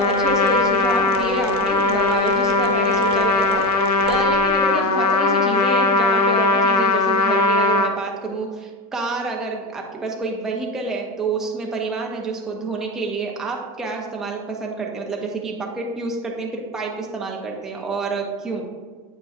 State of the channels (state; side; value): normal; both; correlation 0.21